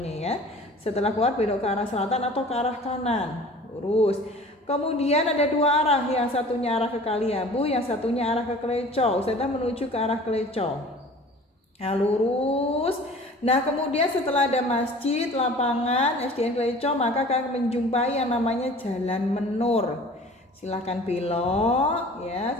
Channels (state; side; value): normal; both; correlation 0.45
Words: ya. Setelah keluar belok ke arah selatan atau ke arah kanan, lurus. Kemudian ada 2 arah, yang satunya arah ke Kaliabu, yang satunya arah ke Kleco. Ustazah menuju ke arah Kleco. Nah, lurus. Nah, kemudian setelah ada masjid, lapangan, SDN Kleco, maka kalian menjumpai yang namanya Jalan Menur. Silahkan belok ya